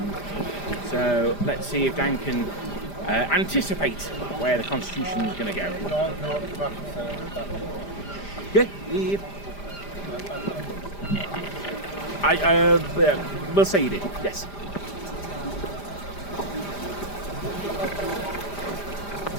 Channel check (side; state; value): right; late; 5.0 ms